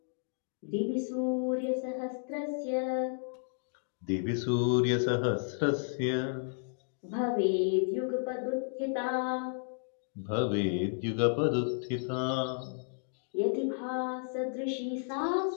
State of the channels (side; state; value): right; silent; digital silence